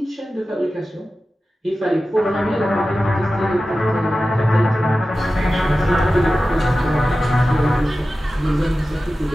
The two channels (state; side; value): normal; both; correlation 0.94